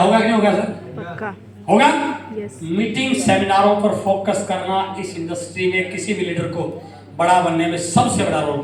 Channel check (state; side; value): identical; both; correlation 1.00